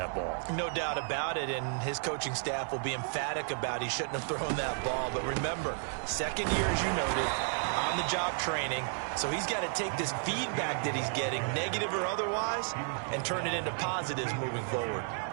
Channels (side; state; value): left; silent; 56 dB below the other